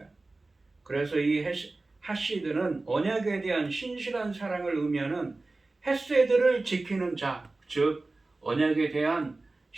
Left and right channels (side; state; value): left; quieter; 3.3 dB